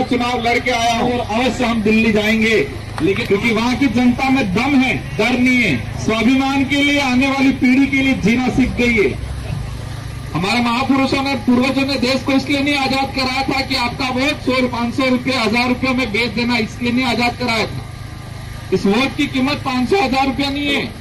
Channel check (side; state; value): both; identical; correlation 1.00